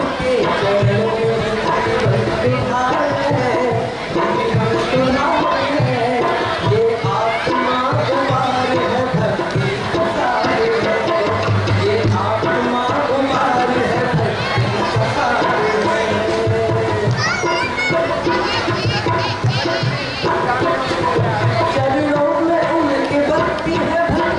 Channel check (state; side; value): identical; both; correlation 1.00